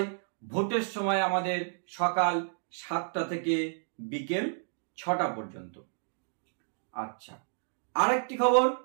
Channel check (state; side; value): silent; left; digital silence